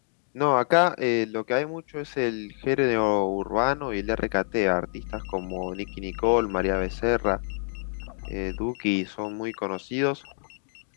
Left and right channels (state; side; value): silent; right; digital silence